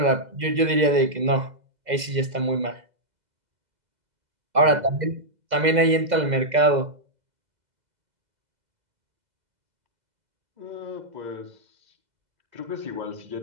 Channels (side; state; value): left; late; 2.0 ms